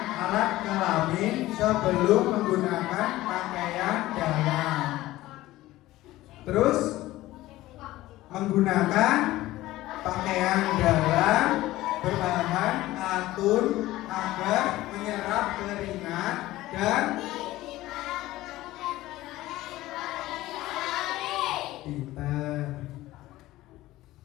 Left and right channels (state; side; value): quieter; right; 16.7 dB